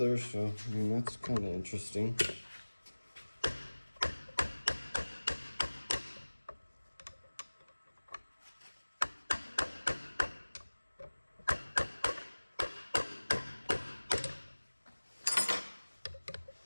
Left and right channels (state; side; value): inverted; both; correlation -1.00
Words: so I mean, that's kind of interesting.